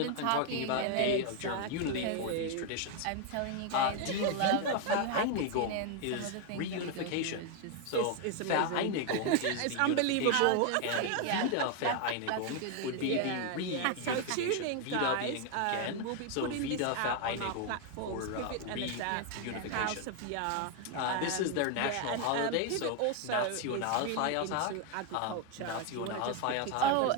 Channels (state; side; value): different; both; correlation 0.01